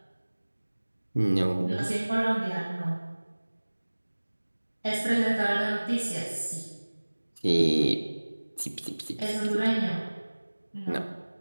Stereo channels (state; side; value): inverted; both; correlation -1.00